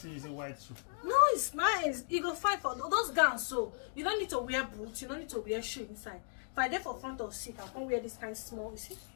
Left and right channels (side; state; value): right; silent; digital silence